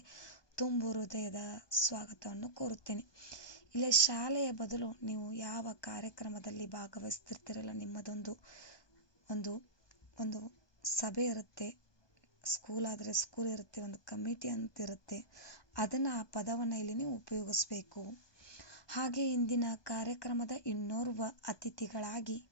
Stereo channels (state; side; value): late; right; 1.2 ms